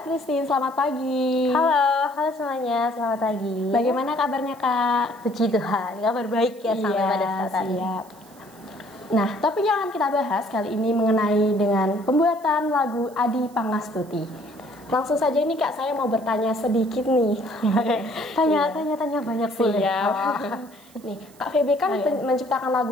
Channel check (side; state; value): right; noise; hiss, 26 dB below the sound